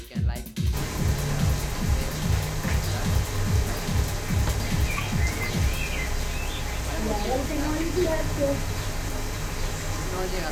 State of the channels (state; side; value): identical; both; correlation 1.00